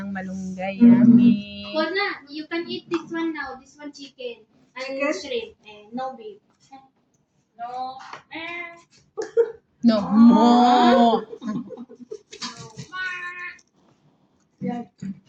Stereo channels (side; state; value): both; identical; correlation 1.00